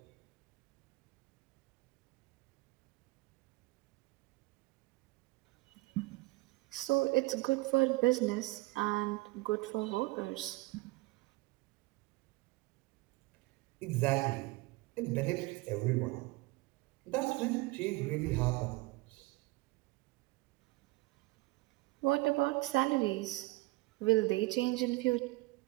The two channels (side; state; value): left; quieter; 22.4 dB